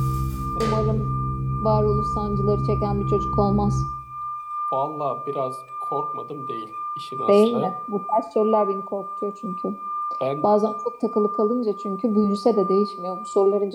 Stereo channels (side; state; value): both; identical; correlation 1.00